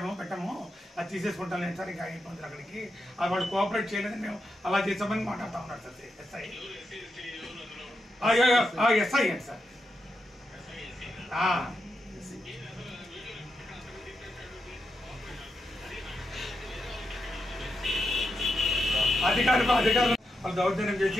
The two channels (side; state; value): both; normal; correlation 0.85